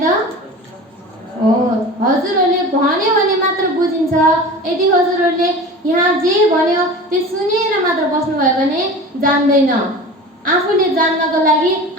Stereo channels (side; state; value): both; normal; correlation 0.35